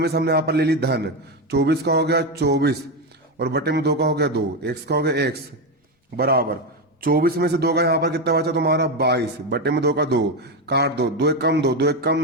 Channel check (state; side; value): normal; both; correlation 0.11